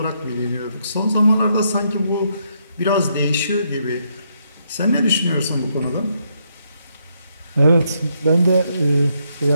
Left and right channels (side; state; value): both; inverted; correlation -0.76